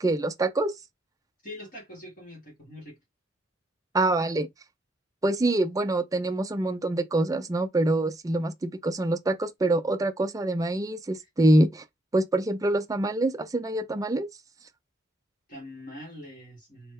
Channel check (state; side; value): normal; both; correlation 0.74